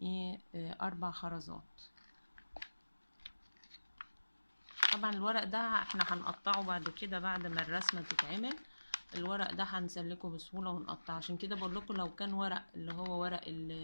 ايه 4 خرزات. طبعا الورق ده احنا هنقطعه بعد كده بعد ما الرسمة تتعمل، الورق ده هنسلكه بسهولة ونقطعه، عشان كده بقول لكم لو كان ورق اللي هو ورق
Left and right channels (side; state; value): both; inverted; correlation -1.00